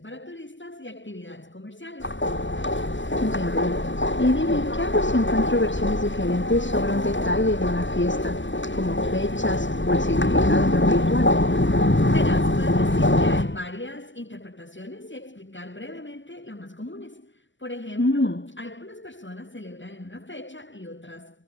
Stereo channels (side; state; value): right; late; 0.54 ms